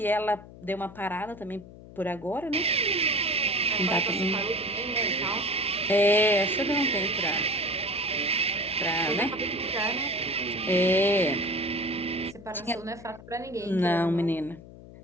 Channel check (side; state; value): left; noise; hum, 18 dB below the sound